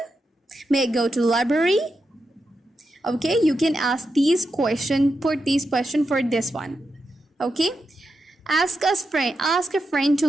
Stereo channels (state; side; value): normal; both; correlation 0.87